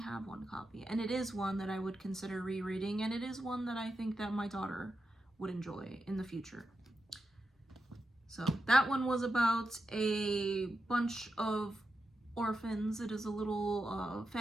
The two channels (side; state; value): both; normal; correlation 0.88